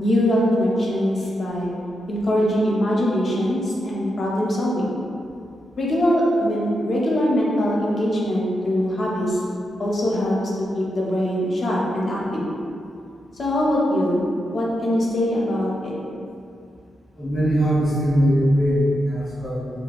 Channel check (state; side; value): normal; both; correlation 0.85